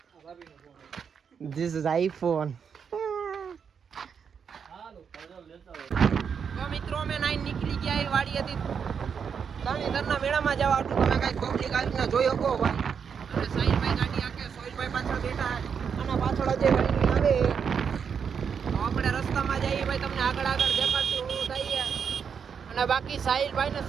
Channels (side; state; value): left; quieter; 6.8 dB